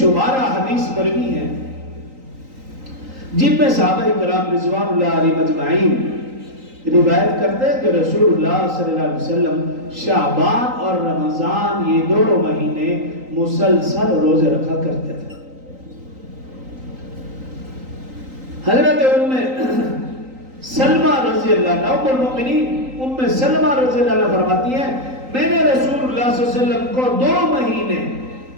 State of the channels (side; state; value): left; late; 3.9 ms